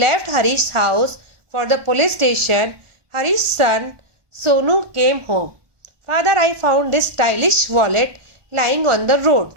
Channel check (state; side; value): late; left; 1.2 ms